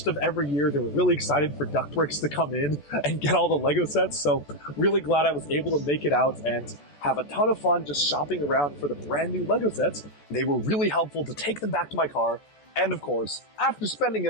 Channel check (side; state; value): right; late; 14 ms